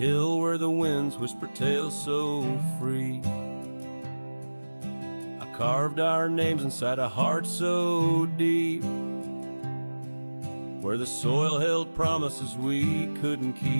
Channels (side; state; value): both; inverted; correlation -1.00